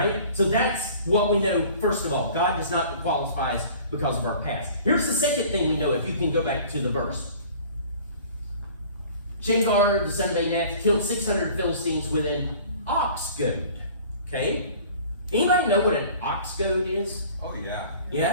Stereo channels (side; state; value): both; inverted; correlation -0.47